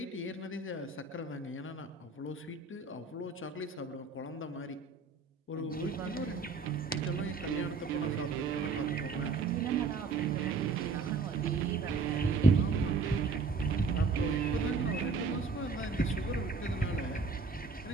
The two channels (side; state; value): left; quieter; 4.3 dB